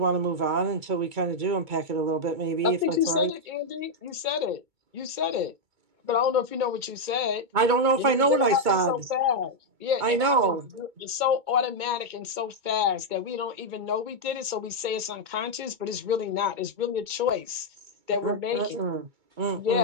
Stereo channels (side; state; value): left; late; 2.2 ms